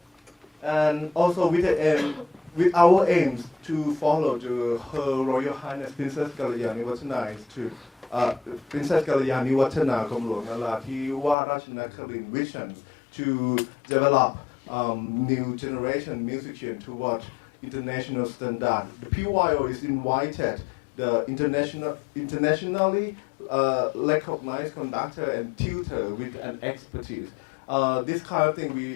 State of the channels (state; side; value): drops out; right; at 11.4 s